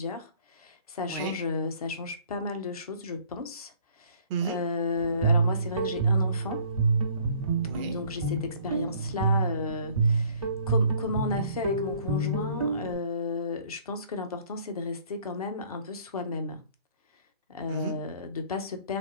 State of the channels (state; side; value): inverted; both; correlation -0.56